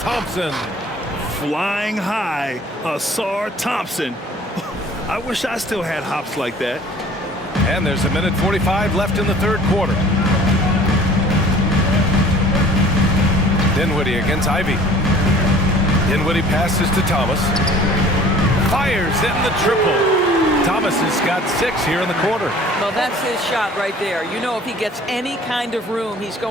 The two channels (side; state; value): both; normal; correlation 0.49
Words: Flying high, Asar Thompson. I wish I still had hops like that. And there's 1:45 left in the third quarter. Dinwiddie against Ivy. Dinwiddie passes to Thomas. Fires in the triple. Thomas has got 6 here in the quarter. Well, that's his shot right there. You know, if he gets any kind of room, he's